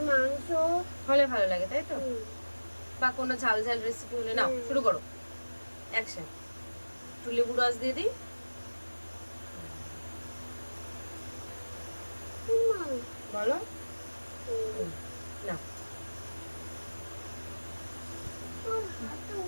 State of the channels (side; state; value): both; inverted; correlation -1.00